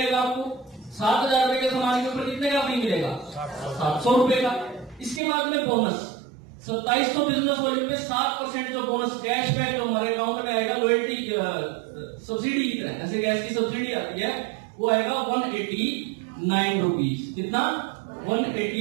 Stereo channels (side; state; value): left; drops out; at 5.2 s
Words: आपको। 7,000 रुपए के सामान के ऊपर कितने का फ्री मिलेगा? 700 रुपए का। इसके बाद में बोनस 2700 बिजनेस वॉल्यूम पे 7% जो बोनस कैशबैक जो हमारे अकाउंट में आएगा, लॉयल्टी सब्सिडी की तरह, जैसे गैस की सब्सिडी आती है, वो आएगा 189 रुपीज। कितना?